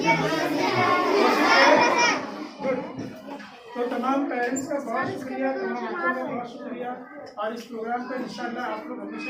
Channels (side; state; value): both; identical; correlation 1.00